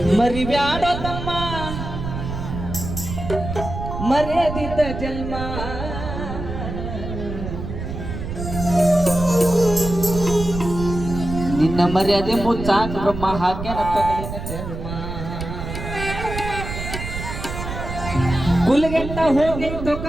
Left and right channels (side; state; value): right; noise; rumble, 6 dB below the sound